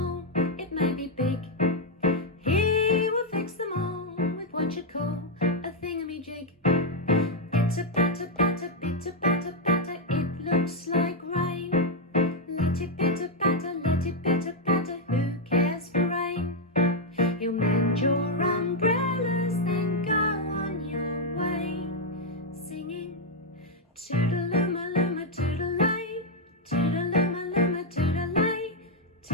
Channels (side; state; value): both; normal; correlation -0.01